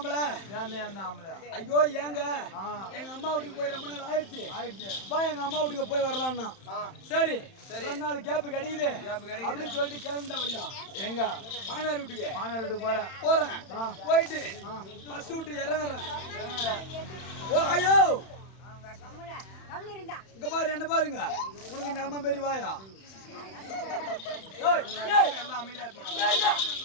ஐயோ ஏங்க எங்க அம்மா வீட்டுக்கு போய் ரொம்ப நாள் ஆயிடுச்சு. வா எங்க அம்மா வீட்டுக்கு போய் வரலாம்னா சரி 2 நாள் கேப் கிடைக்குது அப்படின்னு சொல்லிட்டு கிளம்பிட்டேன் பையா. எங்க மாமியார் வீட்டுக்கு போறேன். போயிட்டு பஸ் விட்டு இறங்குறேன். ஓ ஐயோ இங்க பாரு, என்ன பாருங்க, உனக்கு நம்ம பெரிய வாயா.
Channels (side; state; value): right; late; 31 ms